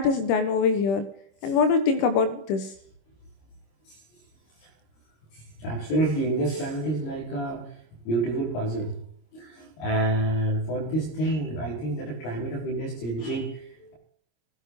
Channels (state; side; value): late; right; 26 ms